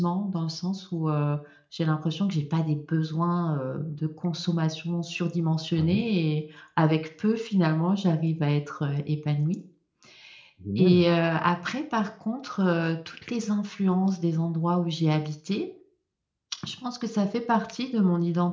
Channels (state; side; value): identical; both; correlation 1.00